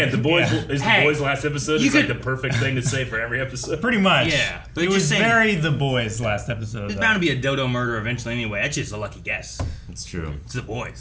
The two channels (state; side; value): identical; both; correlation 1.00